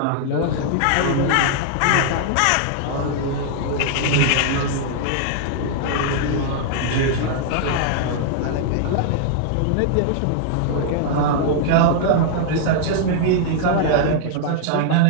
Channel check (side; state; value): both; different; correlation -0.01